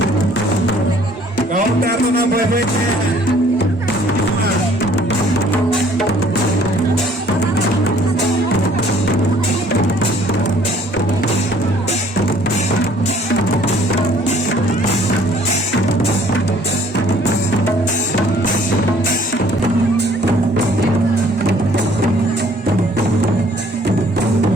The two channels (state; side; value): normal; both; correlation 0.58